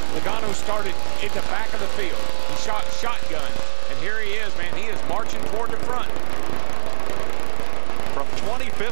Logano started at the back of the field. He shot shotgun, and here he is, man. He is marching toward the front. From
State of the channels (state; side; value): silent; left; 51 dB below the other